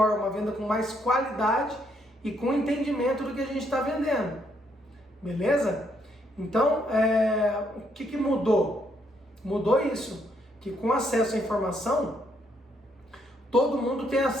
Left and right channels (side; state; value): both; normal; correlation 0.73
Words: uma venda com mais qualidade e com entendimento do que a gente está vendendo. Beleza? Então, o que mudou? Mudou isso, que com acesso à informação, todo mundo tem